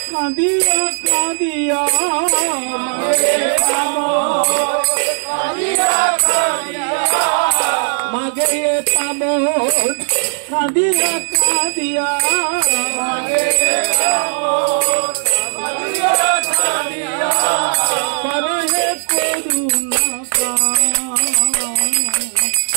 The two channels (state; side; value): silent; left; digital silence